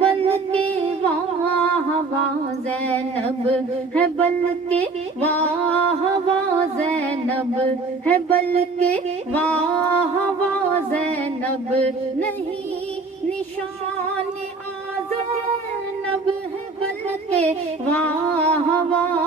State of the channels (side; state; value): left; quieter; 3.9 dB